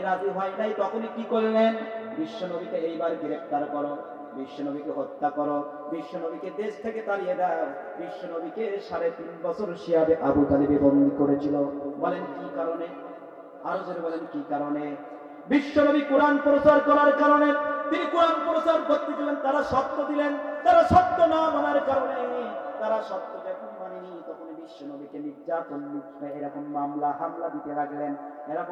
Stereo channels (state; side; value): identical; both; correlation 1.00